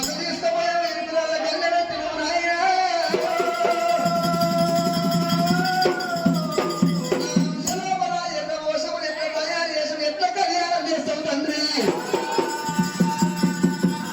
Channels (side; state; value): both; identical; correlation 1.00